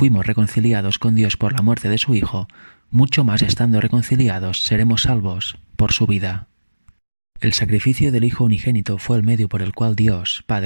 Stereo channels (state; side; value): inverted; both; correlation -1.00